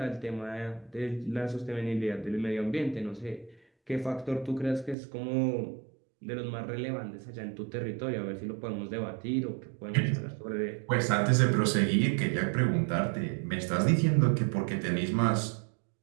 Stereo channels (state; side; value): drops out; left; at 5.0 s